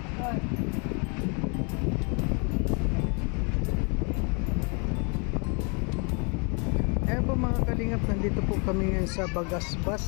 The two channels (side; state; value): right; quieter; 34.8 dB